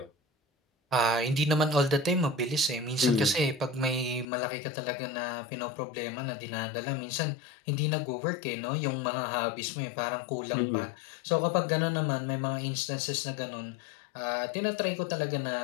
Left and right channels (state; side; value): drops out; right; at 4.2 s